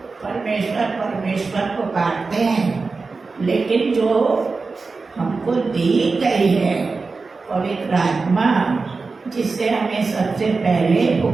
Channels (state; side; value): quieter; left; 4.2 dB